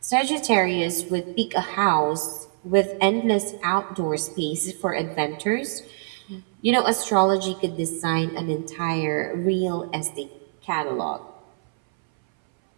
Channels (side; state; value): left; silent; 62 dB below the other